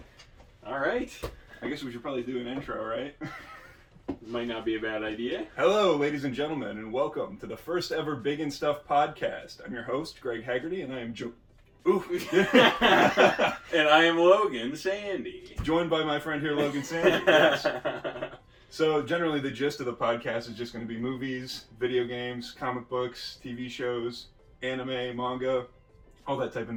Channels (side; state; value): both; identical; correlation 1.00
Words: All right. I guess we should probably do an intro, right? Might not be a bad idea. Hello, ladies and gentlemen, and welcome to the first ever Big and Stuff podcast. I'm your host, Greg Haggerty, and I am And I am Logan Sandy. joined by my friend here, Logan Sandy. Yes. So, generally, the gist of the podcast is just going to be movies, video games, comic books, TV shows, anime, manga, all that type of